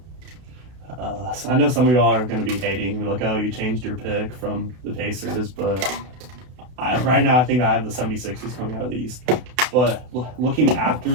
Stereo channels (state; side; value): late; left; 32 ms